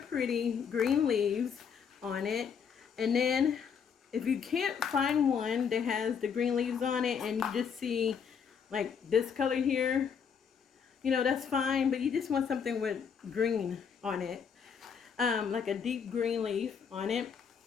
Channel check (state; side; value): quieter; right; 6.9 dB